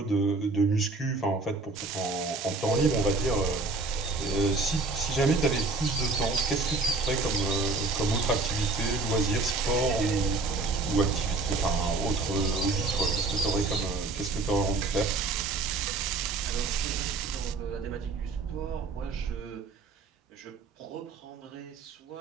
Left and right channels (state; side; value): quieter; left; 3.6 dB